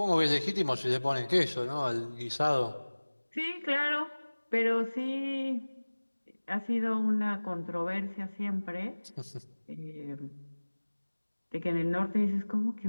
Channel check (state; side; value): inverted; both; correlation -1.00